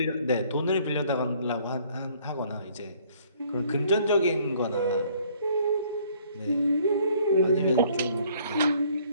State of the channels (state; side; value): inverted; both; correlation -0.60